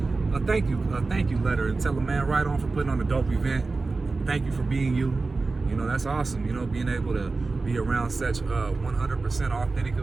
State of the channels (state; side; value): quieter; left; 3.8 dB